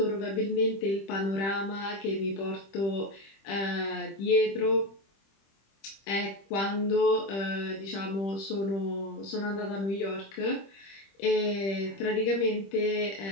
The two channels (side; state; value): right; late; 26 ms